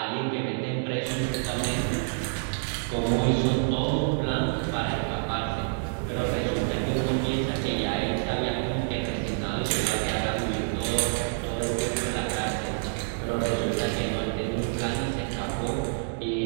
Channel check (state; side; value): silent; left; digital silence